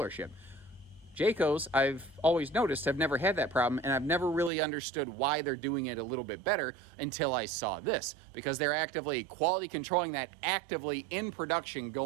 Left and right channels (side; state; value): left; drops out; at 4.5 s